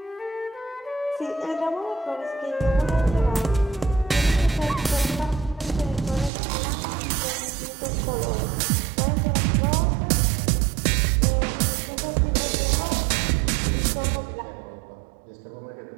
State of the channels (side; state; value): left; drops out; at 6.3 s